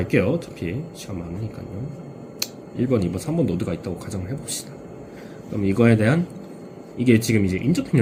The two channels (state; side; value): identical; both; correlation 1.00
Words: 어차피 시간 많으니까요. 1번, 2번, 3번 노드가 있다고 가정을 해봅시다. 그럼 이거에 대한 이게 지금 이제